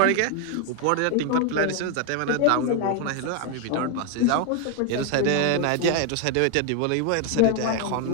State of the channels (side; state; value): both; different; correlation 0.01